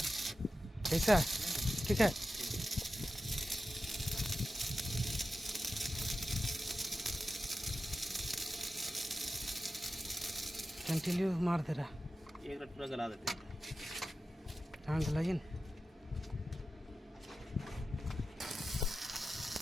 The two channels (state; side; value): normal; both; correlation 0.92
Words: ऐसा ठीक है। कंटिन्यू मार दे रहा। एक रट पूरा गला देते हैं। हाँ गलाइए ना।